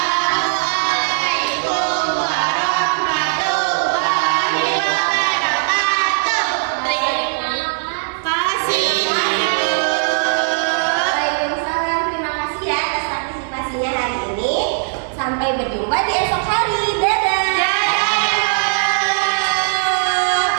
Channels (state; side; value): silent; left; 57 dB below the other